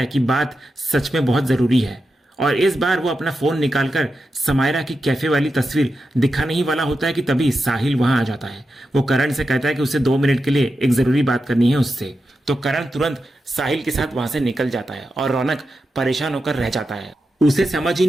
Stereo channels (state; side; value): normal; both; correlation 0.89